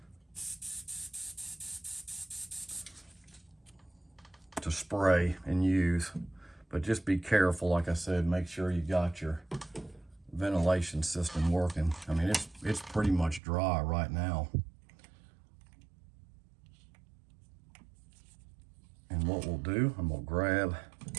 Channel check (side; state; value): left; drops out; at 13.4 s